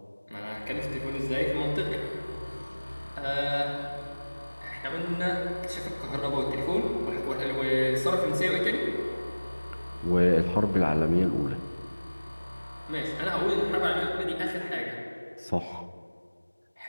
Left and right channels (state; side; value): inverted; both; correlation -1.00